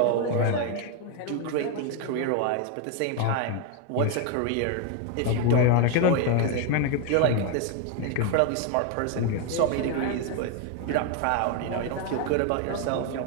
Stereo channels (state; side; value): different; both; correlation 0.01